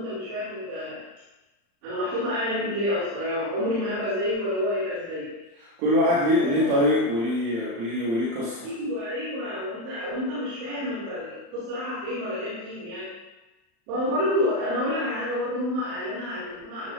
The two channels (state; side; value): late; left; 35 ms